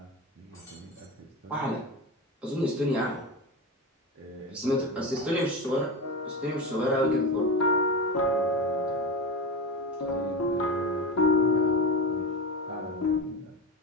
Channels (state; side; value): normal; both; correlation 0.23